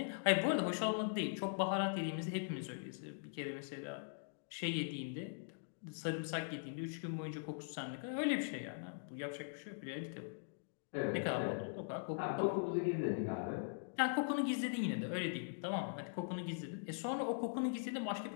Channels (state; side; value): silent; right; digital silence